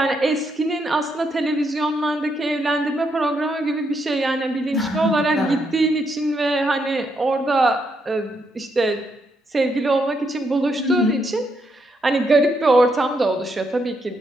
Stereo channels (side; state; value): both; normal; correlation 0.78